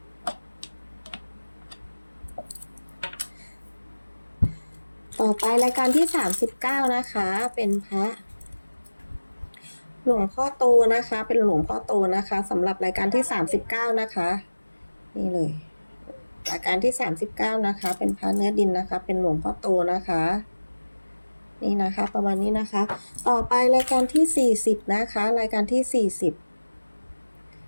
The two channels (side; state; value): both; inverted; correlation -1.00